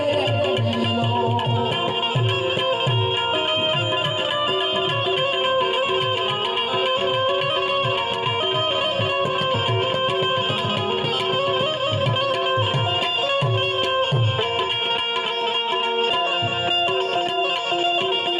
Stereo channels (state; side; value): identical; both; correlation 1.00